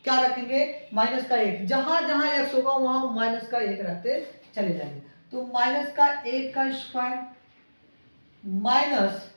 क्या रखेंगे? -1। जहां जहां x होगा वहां -1 रखते चले जाएंगे। तो -1 का स्क्वायर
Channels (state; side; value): inverted; both; correlation -1.00